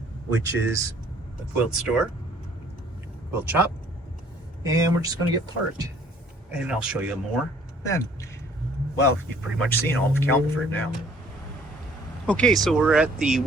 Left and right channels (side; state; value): both; normal; correlation 0.58